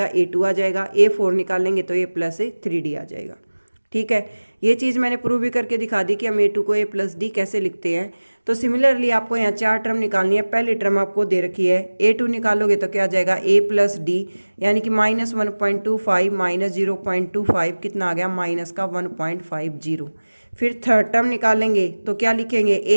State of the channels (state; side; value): inverted; both; correlation -1.00